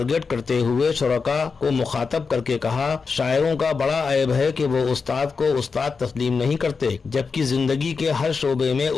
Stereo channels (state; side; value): quieter; right; 5.0 dB